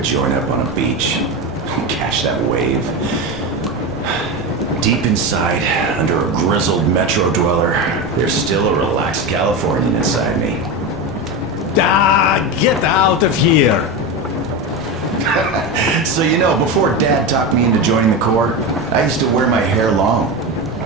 joint up on a beach. Catch that wave. Deep inside, under a grizzled metro dweller, there's still a relaxed Californian inside me. Ah, get out of here! So you know, before Dad talked me into joining the Corps, I used to wear my hair long.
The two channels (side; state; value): right; noise; rumble, 20 dB below the sound